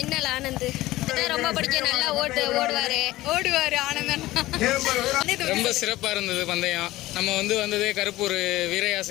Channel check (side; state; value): right; quieter; 17.2 dB